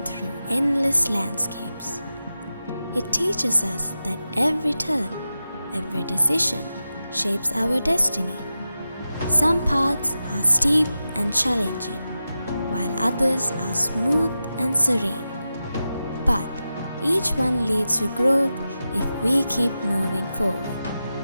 through endless landscapes. It teaches us that every turn, every decision shapes our destiny. Some paths are steep and challenging, while others are smooth and serene. But each one leads to growth if we keep moving forward.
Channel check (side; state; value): both; inverted; correlation -0.92